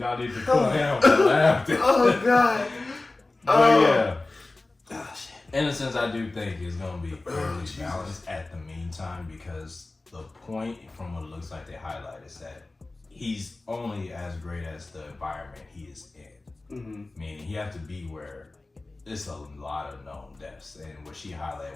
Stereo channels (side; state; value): right; quieter; 3.1 dB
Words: need to cool down with the laughter. Oh god. But yeah. In a sense, I do think it's going to be fairly balanced at the meantime, because the point from what it looks like they highlight is that he's only as great as the environment he is in. Mm-hmm. Meaning he have to be where it's a lot of known deaths. And what she